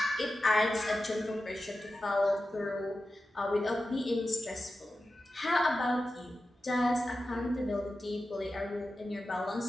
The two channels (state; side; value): normal; both; correlation 0.92